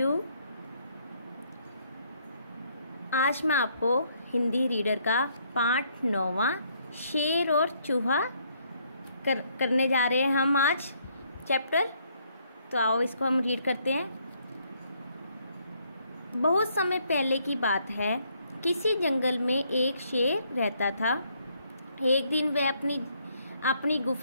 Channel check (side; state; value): both; inverted; correlation -0.69